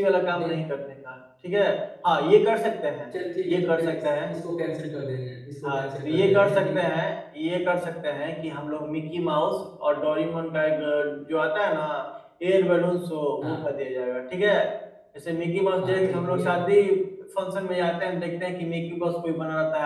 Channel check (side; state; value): both; identical; correlation 1.00